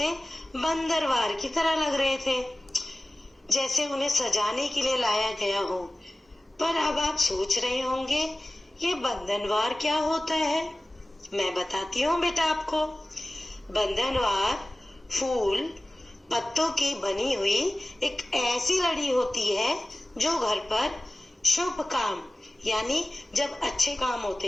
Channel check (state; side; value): normal; both; correlation 0.97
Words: बंदरवार की तरह लग रहे थे, जैसे उन्हें सजाने के लिए लाया गया हो। पर अब आप सोच रहे होंगे, ये बंधनवार क्या होता है? मैं बताती हूँ बेटा आपको। बंधनवार फूल पत्तों की बनी हुई एक ऐसी लड़ी होती है जो घर पर शुभ काम, यानी जब अच्छे काम